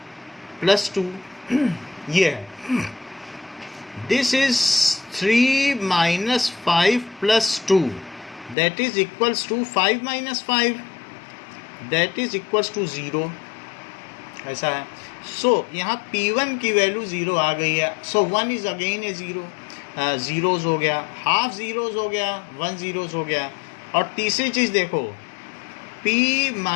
+ 2 ये है। This is 3 - 5 + 2, that is equals to 5 - 5, that is equals to 0, ऐसा है। सो यहाँ P1 की वैल्यू 0 आ गई है। सो 1 इज़ अगेन ए 0, ज़ीरोज़ हो गया, हाफ ज़ीरोज़ हो गया, 1 ज़ीरोज़ हो गया। और तीसरी चीज़ देखो, P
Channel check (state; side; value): drops out; right; at 8.6 s